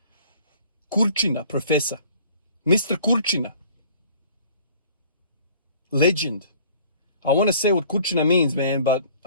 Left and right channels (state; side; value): inverted; both; correlation -0.52